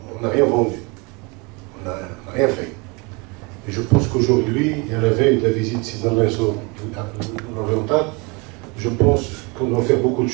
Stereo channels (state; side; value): quieter; left; 29.0 dB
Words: on n'a rien vendu, on n'a rien fait. Et je pense qu'aujourd'hui, à la veille de la visite dans l'oriental, je pense qu'on doit faire beaucoup de